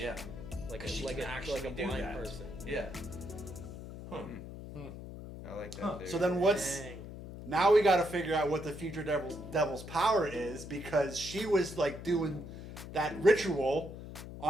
Like 'Cause she like can a actually blind do that. person. Yeah. I like that. Huh. theory. So then what's... Dang. Now we got to figure out what the future devil's power is, because she was, like, doing that ritual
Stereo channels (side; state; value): left; noise; hum, 11 dB below the sound